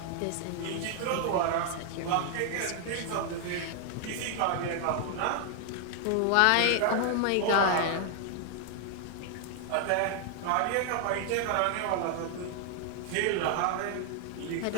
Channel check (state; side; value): different; both; correlation 0.00